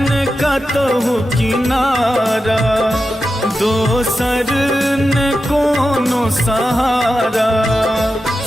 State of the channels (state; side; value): normal; both; correlation 0.90